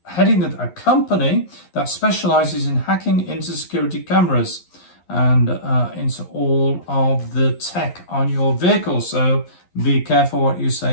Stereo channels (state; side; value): late; right; 11 ms